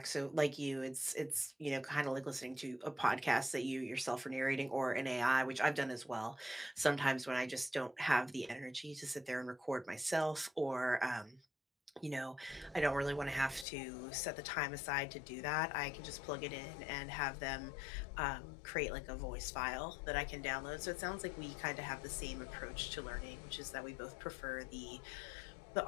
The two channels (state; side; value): drops out; right; at 13.7 s